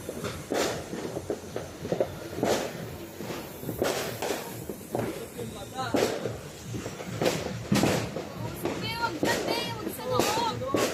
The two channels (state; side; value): identical; both; correlation 1.00